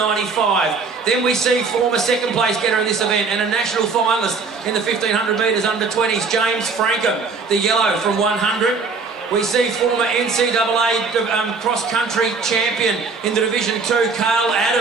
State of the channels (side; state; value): left; quieter; 4.6 dB